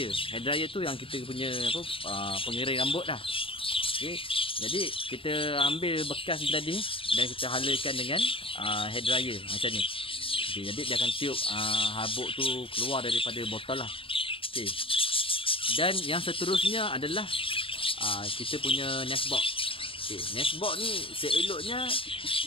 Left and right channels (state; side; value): late; right; 0.26 ms